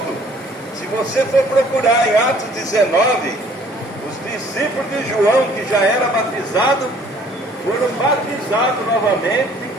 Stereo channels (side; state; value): both; normal; correlation 0.57